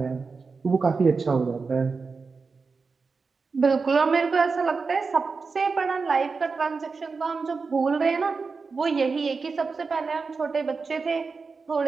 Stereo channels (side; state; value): left; quieter; 4.6 dB